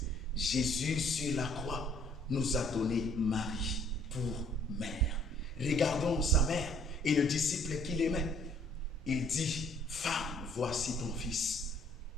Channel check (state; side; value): normal; both; correlation 0.60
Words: Jésus sur la croix nous a donné Marie pour mère. Regardons sa mère et le disciple qu'il aimait. Il dit, femme, voici ton fils.